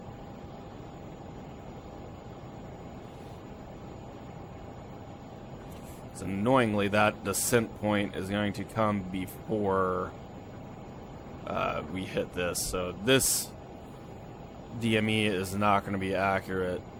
So annoyingly, that descent point is going to come before we hit this. So this DME is not going to be accurate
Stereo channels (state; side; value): identical; both; correlation 1.00